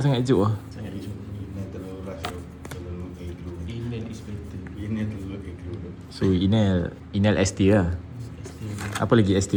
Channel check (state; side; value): identical; both; correlation 1.00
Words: juk lah. Sangat hijau. Ini terlalu rush tu. Terlalu aggro. Inel is better. Inel terlalu aggro tu. So Inel ST lah. Apa lagi